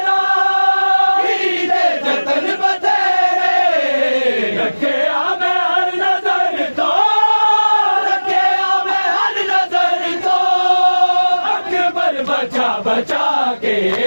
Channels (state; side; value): inverted; both; correlation -1.00